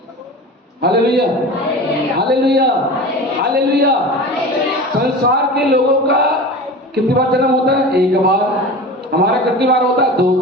Hallelujah, hallelujah, hallelujah. संसार के लोगों का कितनी बार जन्म होता है? एक बार। हमारा कितनी बार होता है? 2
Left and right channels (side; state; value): both; normal; correlation 0.33